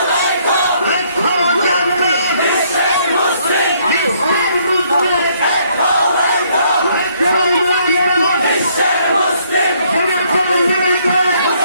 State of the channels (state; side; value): inverted; both; correlation -0.67